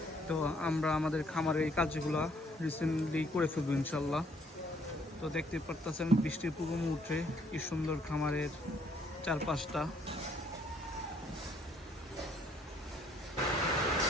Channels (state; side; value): normal; both; correlation 0.65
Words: তো আমরা আমাদের খামারে এই কাজগুলো রিসেন্টলি করে ফেলবো ইনশাল্লাহ। তো দেখতে পারতেছেন বৃষ্টির পূর্ব মুহূর্তে কি সুন্দর খামারের চারপাশটা।